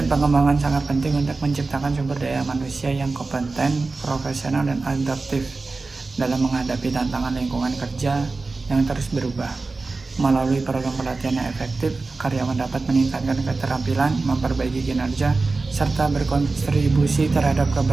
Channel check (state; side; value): quieter; left; 3.7 dB